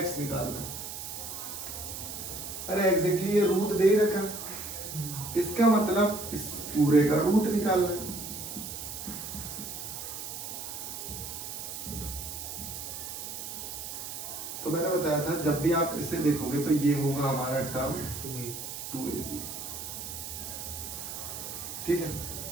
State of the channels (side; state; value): right; noise; hiss, 7 dB below the sound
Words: निकालना है। अरे एग्जैक्टली ये रूट दे ही रखा, इसका मतलब इस पूरे का रूट निकालना है। तो मैंने बताया था जब भी आप इसे देखोगे तो ये होगा हमारा टर्म 2ab। ठीक है,